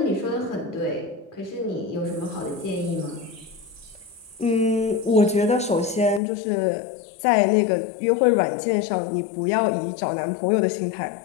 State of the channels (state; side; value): drops out; right; at 6.2 s